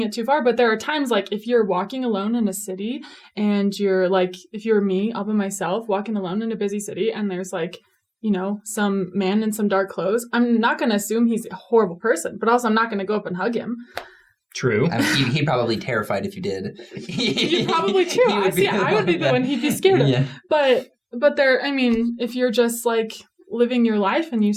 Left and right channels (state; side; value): identical; both; correlation 1.00